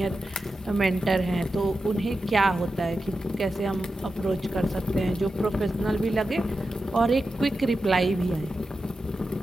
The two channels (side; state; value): both; normal; correlation 0.91